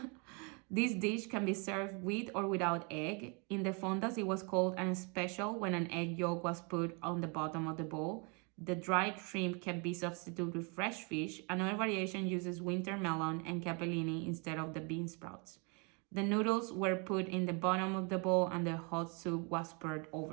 this dish can be served with or without egg. In the fondas, it was called an special when an egg yolk was put on the bottom of the bowl. The dried shrimp can be substituted with fresh fish. Another variation uses winter melon and capellini instead of the bean sprouts. The noodles were put in the bottom of the bowl and the hot soup was poured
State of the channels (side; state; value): left; quieter; 33.6 dB